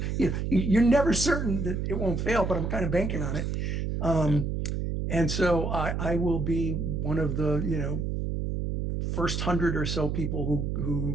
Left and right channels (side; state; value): right; noise; hum, 1 dB below the sound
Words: you're never certain that it won't fail, but I'm kind of banking on it. And so I will be one of the, first 100 or so people